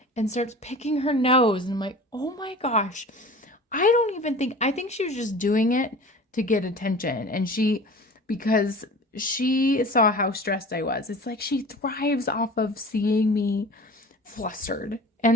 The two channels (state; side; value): normal; both; correlation 0.39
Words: and starts picking her nose. And I'm like, oh my gosh, I think she was just doing it to get attention. And because she saw how stressed I was. It's like she thrives off of seeing me flustered,